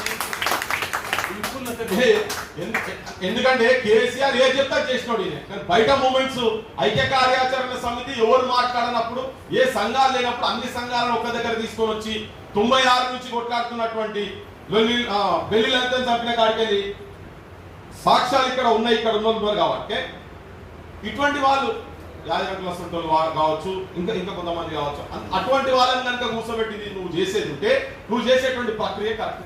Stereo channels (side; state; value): both; identical; correlation 1.00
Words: ఎందుకంటే కేసీఆర్ ఏ చెప్తా చేసినోడు. బయట మూమెంట్స్, ఐక్య కార్యాచరణ సమితి ఎవరు మాట్లాడినప్పుడు, ఏ సంఘాలు లేనప్పుడు అన్ని సంఘాలను ఒక దగ్గర తీసుకొని వచ్చి 96 నుంచి కొట్లాడుతున్నటువంటి బెల్లిలంతా చంపిన కాడికెళ్ళి సాక్ష్యాలు ఇక్కడ ఉన్నాయి, ఇక్కడ ఉన్నారు. కాబట్టి ఇటువంటి వాళ్ళు యాజకుల సొంతలు కావచ్చు, ఇంకా కొంతమంది కావచ్చు, అటువంటి వాళ్ళని కనుక కూర్చోబెట్టి నువ్వు చేసేది ఉంటే నువ్వు చేసేటువంటి ప్రక్రియ